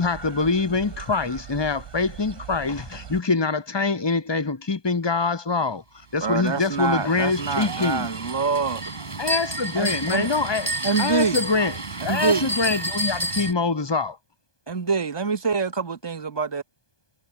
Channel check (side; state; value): right; late; 1.2 ms